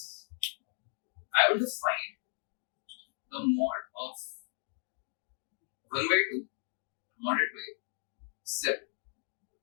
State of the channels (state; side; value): silent; right; 54 dB below the other